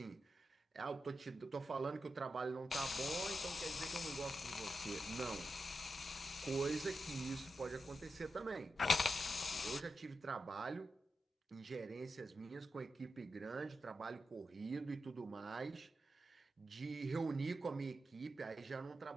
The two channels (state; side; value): normal; both; correlation 0.89